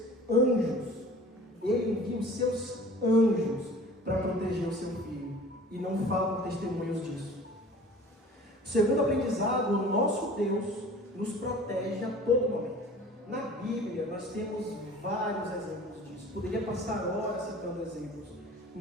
anjos, para proteger o seu filho, e não faltam testemunhos disso. Segundo aprendizado, o nosso Deus nos protege a todo momento. Na Bíblia nós temos vários exemplos disso, poderia passar horas citando exemplos.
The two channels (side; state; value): both; normal; correlation 0.44